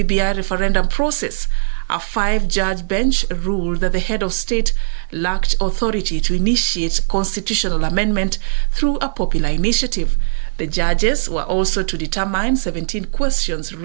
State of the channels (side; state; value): left; silent; digital silence